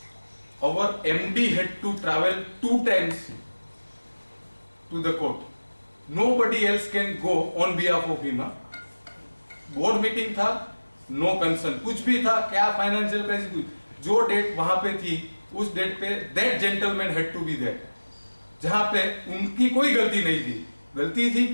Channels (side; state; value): both; inverted; correlation -1.00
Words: Our MD had to travel 2 times to the court. Nobody else can go on behalf of him. Board meeting था, नो कंसर्न, कुछ भी था, क्या फाइनेंशियल क्राइसिस, कुछ जो डेट वहां पे थी उस डेट पे that gentleman had to be there, जहां पे उनकी कोई गलती नहीं थी। गलती थी